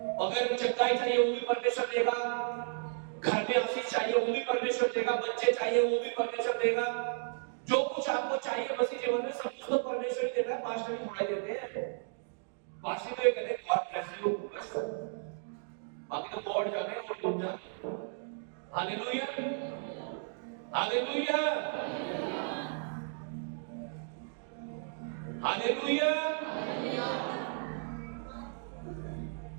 अगर चंगाई चाहिए वो भी परमेश्वर देगा, घर में आशीष चाहिए वो भी परमेश्वर देगा, बच्चे चाहिए वो भी परमेश्वर देगा। जो कुछ आपको चाहिए मसीह जीवन में सब कुछ तो परमेश्वर ही देता है, पास्टर ही थोड़ा देते हैं। पास्टर तो ये कहते हैं गॉड ब्लेस यू, बस बाकी तो गॉड जाने और तुम जाने। Hallelujah, hallelujah, hallelujah.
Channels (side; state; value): left; silent; digital silence